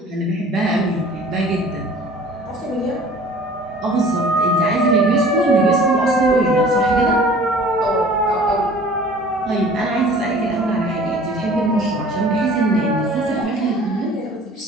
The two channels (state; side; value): normal; both; correlation 0.48